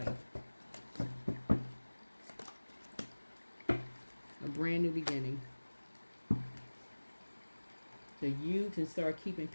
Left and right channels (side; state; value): both; inverted; correlation -1.00